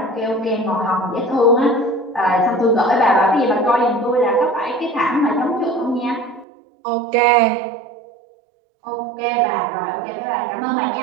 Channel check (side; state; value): left; drops out; at 6.5 s